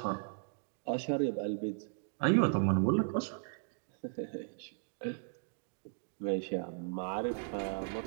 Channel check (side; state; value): left; silent; digital silence